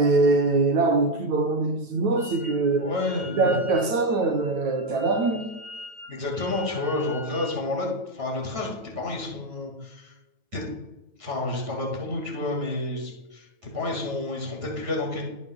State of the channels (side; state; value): left; late; 9.1 ms